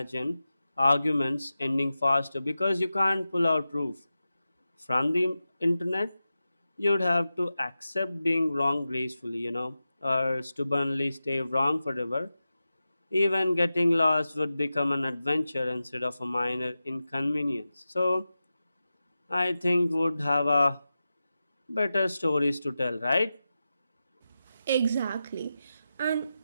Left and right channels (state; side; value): inverted; both; correlation -0.93